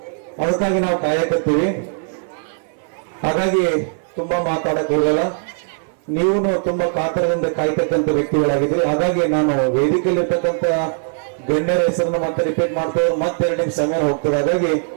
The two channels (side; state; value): left; silent; 58 dB below the other